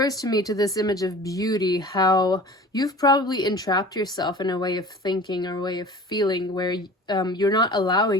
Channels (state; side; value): normal; both; correlation 0.41